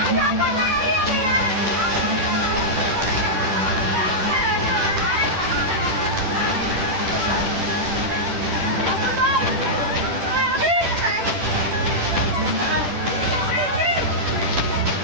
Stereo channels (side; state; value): left; late; 10 ms